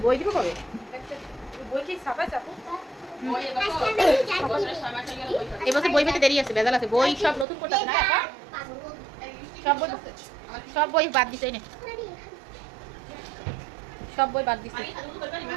বই দিব কবে? এবছর বই পেতে দেরি আছে, ভেজাল আছে। বই সব নতুন করতে না, সব বই বাদ দিছে না, সব বই বাদ দিছে।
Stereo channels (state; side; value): drops out; left; at 7.5 s